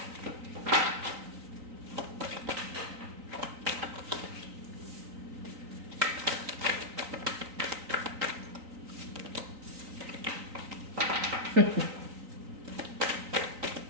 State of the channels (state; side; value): late; left; 3.9 ms